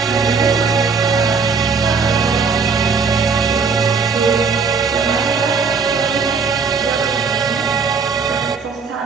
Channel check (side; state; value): left; quieter; 5.1 dB